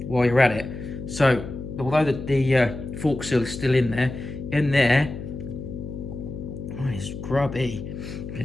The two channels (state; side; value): noise; left; hum, 9 dB below the sound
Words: while you're at it. So, although the fork seal is still in there, oh, it's grubby.